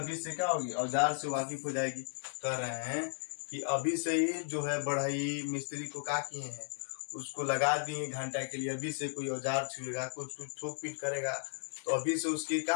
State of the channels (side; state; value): right; silent; digital silence